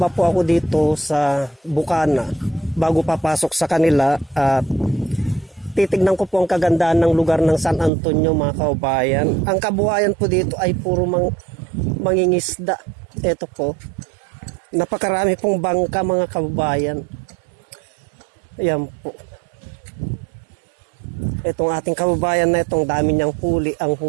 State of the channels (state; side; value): drops out; left; at 7.9 s